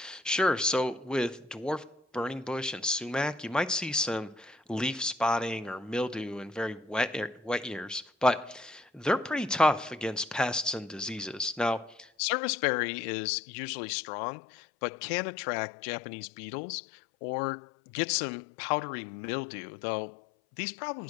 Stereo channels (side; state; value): right; drops out; at 12.1 s